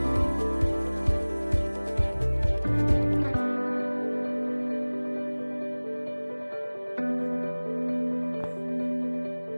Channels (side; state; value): both; inverted; correlation -1.00